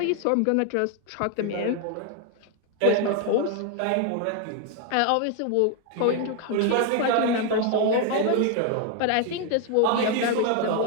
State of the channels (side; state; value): both; different; correlation 0.01